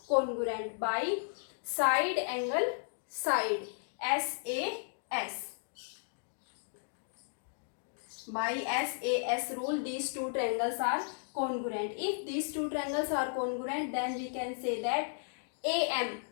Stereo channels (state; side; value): silent; right; digital silence